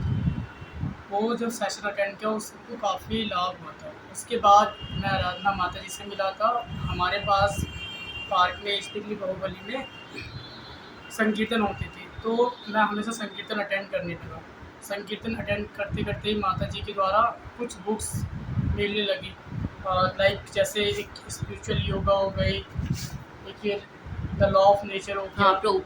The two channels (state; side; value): identical; both; correlation 1.00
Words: वो जब सेशन अटेंड किया उसको काफ़ी लाभ हुआ था। उसके बाद मैं आराधना माता जी से मिला था। हमारे पास पार्क में स्थित बाहुबली में संकीर्तन होते थे, तो मैं हमेशा संकीर्तन अटेंड करने लगा। संकीर्तन अटेंड करते करते ही माता जी के द्वारा कुछ बुक्स मिलने लगी, लाइक जैसे एक स्पिरिचुअल योगा हो गई, एक ये द लॉ ऑफ नेचर हो हाँ, गया।